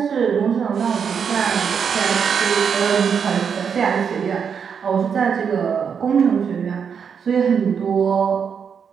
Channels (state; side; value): quieter; left; 6.9 dB